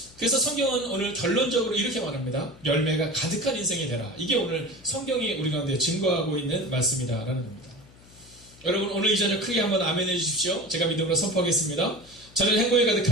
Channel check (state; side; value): noise; left; hum, 24 dB below the sound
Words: 그래서 성경은 오늘 결론적으로 이렇게 말합니다. 열매가 가득한 인생이 되라. 이게 오늘 성경이 우리 가운데 증거하고 있는 말씀이다라는 겁니다. 여러분, 오늘 이 저녁 크게 한번 아멘 해주십시오. 제가 믿음으로 선포하겠습니다. 저는 행복이